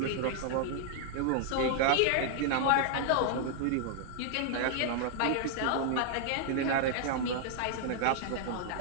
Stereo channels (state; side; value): different; both; correlation -0.01